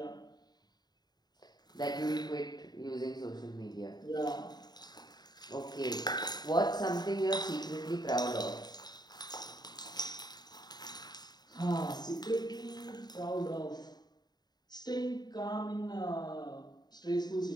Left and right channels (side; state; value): right; late; 0.20 ms